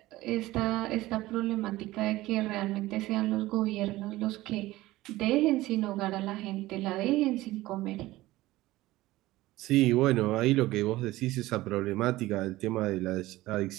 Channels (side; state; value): left; quieter; 17.6 dB